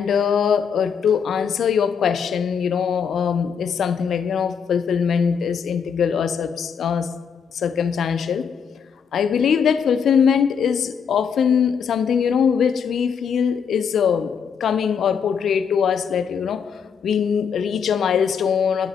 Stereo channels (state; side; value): quieter; right; 6.9 dB